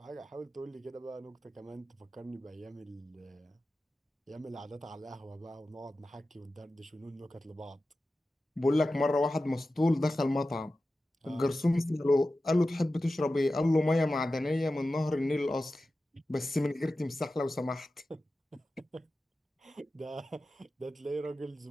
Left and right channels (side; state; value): both; normal; correlation 0.94